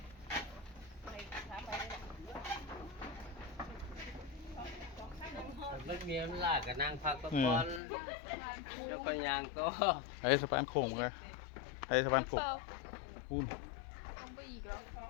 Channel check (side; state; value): right; drops out; at 7.8 s